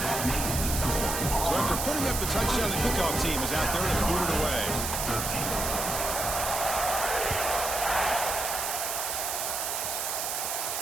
So after putting up the touchdown, the kickoff team is out there to boot it away.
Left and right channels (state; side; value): noise; right; hiss, 2 dB below the sound